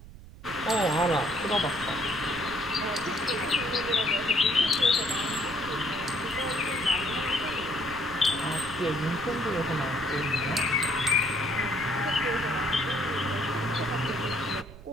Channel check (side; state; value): right; noise; rumble, 17 dB below the sound